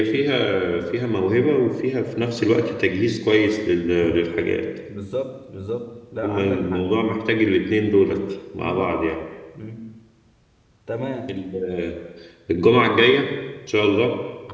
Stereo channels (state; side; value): identical; both; correlation 1.00